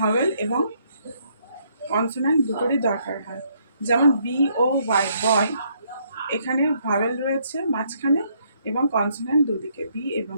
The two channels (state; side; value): inverted; both; correlation -0.70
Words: এবং কনসোনেন্ট দুটোরই দরকার হয়। যেমন BOY বয়, এখানে ভাওয়েল রয়েছে মাঝখানে এবং কনসোনেন্ট দুদিকে বি এবং